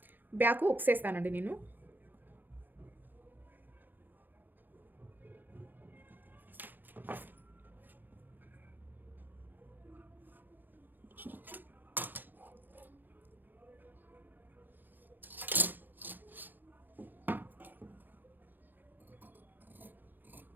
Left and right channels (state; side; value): late; left; 0.089 ms